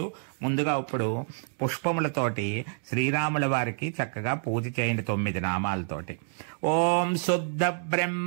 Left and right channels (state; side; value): silent; left; digital silence